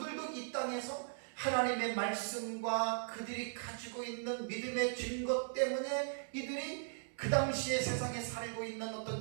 이 땅에서 하나님의 말씀과 그들이 가지고 있는 믿음의 증거 때문에 이들이 그 당시에 세상에 살고 있는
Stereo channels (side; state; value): left; silent; 52 dB below the other